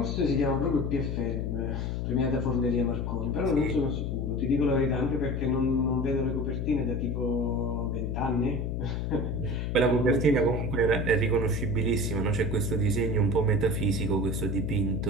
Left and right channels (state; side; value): noise; left; hum, 1 dB below the sound